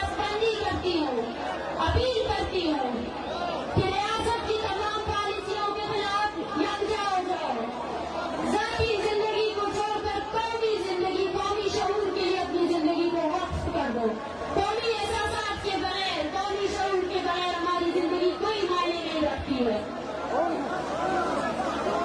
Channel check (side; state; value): both; identical; correlation 1.00